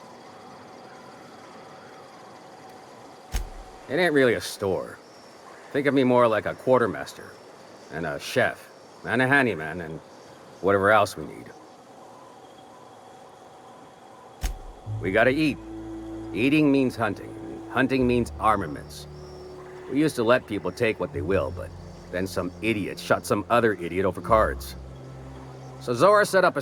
It ain't really a store. Think of me more like a quartermaster, and a chef, and a handyman, and whatever else we need. We gotta eat. Eating means hunting. Hunting means armaments. We used to let people take what they will, but then some idiot shot some other idiot over cards. So Zora set up a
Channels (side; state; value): both; identical; correlation 1.00